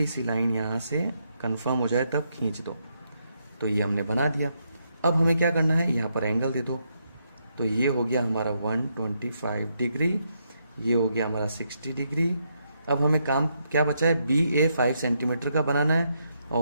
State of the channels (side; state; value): both; inverted; correlation -0.78